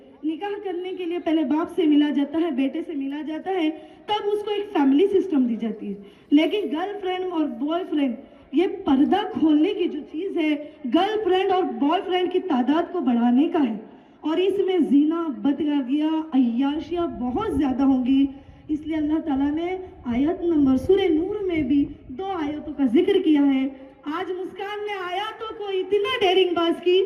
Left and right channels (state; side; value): identical; both; correlation 1.00